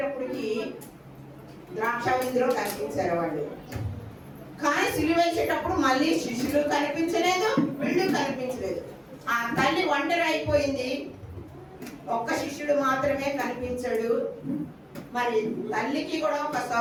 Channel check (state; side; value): identical; both; correlation 1.00